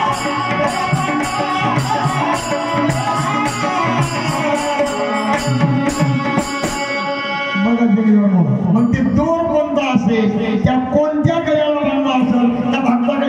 मग ते दोर कोणता असेल, त्या कोणत्या गळ्याला बांधला असेल, त्या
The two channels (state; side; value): identical; both; correlation 1.00